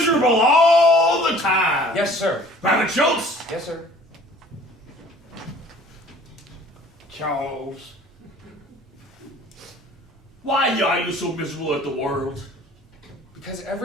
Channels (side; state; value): both; normal; correlation 0.50